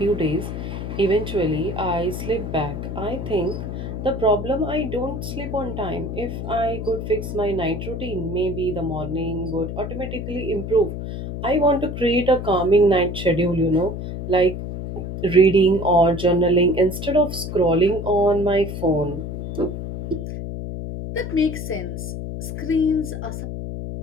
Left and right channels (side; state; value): left; noise; hum, 6 dB below the sound